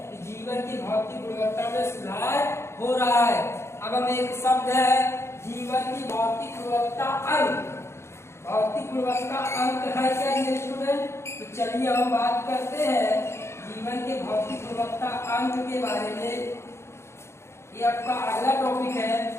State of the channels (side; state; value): right; late; 0.13 ms